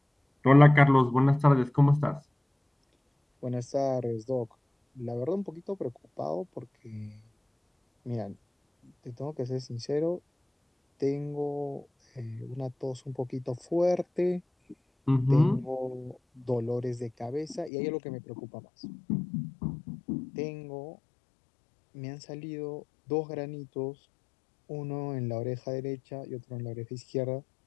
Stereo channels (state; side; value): drops out; right; at 17.7 s